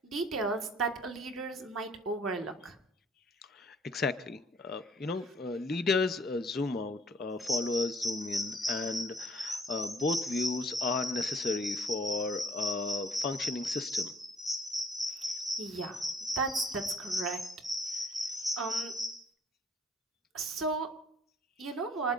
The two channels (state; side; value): normal; both; correlation 0.58